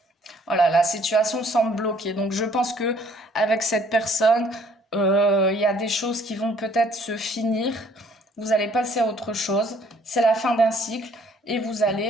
Voilà, la situation semble bloquée. Donc, je pense que avec cette personne, il y a des choses qui vont peut-être se finir. Vous allez passer à autre chose. C'est la fin d'un cycle et vous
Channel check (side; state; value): both; normal; correlation 0.60